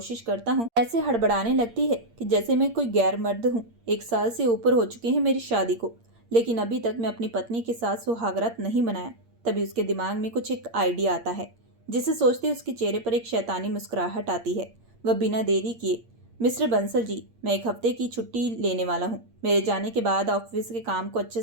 करता हूँ ऐसे हड़बड़ाने लगती है कि जैसे मैं कोई गैर मर्द हूँ। 1 साल से ऊपर हो चुके हैं मेरी शादी को, लेकिन अभी तक मैं अपनी पत्नी के साथ सुहागरात नहीं मनाया। तभी उसके दिमाग में कुछ एक आइडिया आता है, जिसे सोचते उसके चेहरे पर एक शैतानी मुस्कुराहट आती है। वह बिना देरी किए, मिस्टर बंसल जी, मैं 1 हफ्ते की छुट्टी लेने वाला हूँ। मेरे जाने के बाद ऑफिस के काम को अच्छे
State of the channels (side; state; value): left; late; 8.7 ms